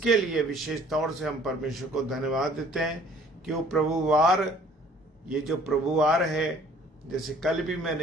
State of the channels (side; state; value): both; normal; correlation 0.55